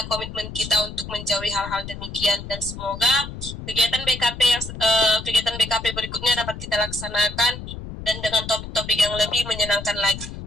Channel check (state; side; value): noise; left; rumble, 10 dB below the sound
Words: komitmen kita untuk menjauhi hal-hal demikian, dan semoga kegiatan BKP berikutnya dapat kita laksanakan dan dengan topik-topik yang lebih menyenangkan lagi.